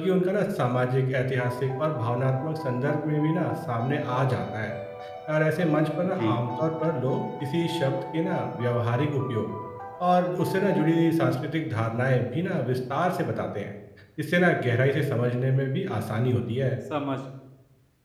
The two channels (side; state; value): both; identical; correlation 1.00